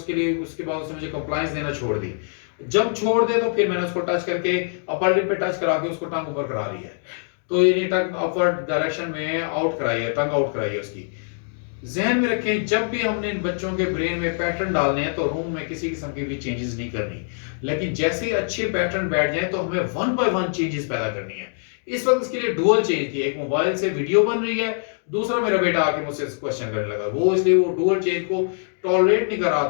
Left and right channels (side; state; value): right; silent; digital silence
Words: लिए उसके बाद उसने मुझे कंप्लायंस देना छोड़ दी। जब छोड़ दे तो फिर मैंने उसको टच करके अपर लिप पे टच करा के उसको टंग ऊपर करा लिया है। तो ये टंग अपवर्ड डायरेक्शन में आउट कराई है, टंग आउट कराई है उसकी। जहन में रखें जब भी हमने इन बच्चों के ब्रेन में पैटर्न डालने हैं तो रूम में किसी किस्म की भी चेंजेस नहीं करनी। लेकिन जैसे ही अच्छे पैटर्न बैठ जाए तो हमें 1 बाय 1 चेंजेस पैदा करनी है। इस वक्त इसके लिए डुअल चेंज थी, एक मोबाइल से वीडियो बन रही है, दूसरा मेरा बेटा आके मुझसे क्वेश्चन करने लगा, वो इसलिए वो डुअल चेंज को टॉलरेट नहीं कर रहा